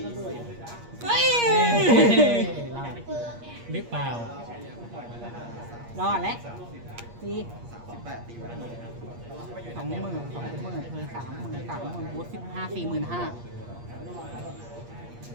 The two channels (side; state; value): left; late; 8.5 ms